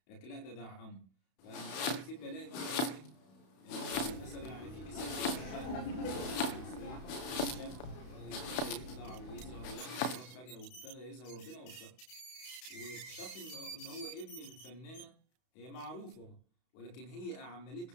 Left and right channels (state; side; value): late; right; 32 ms